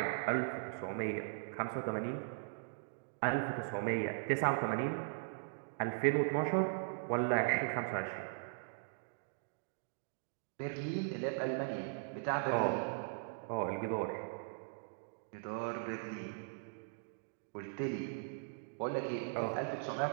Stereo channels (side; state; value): left; silent; digital silence